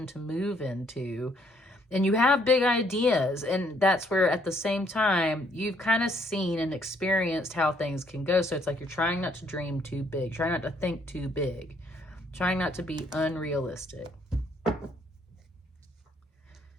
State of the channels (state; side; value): normal; both; correlation 0.68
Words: to move into. And you have big ideas. And that's where at the same time, you've kind of seen and experienced how things can go. So it's like you're trying not to dream too big, trying not to think too big, trying not to be unrealistic.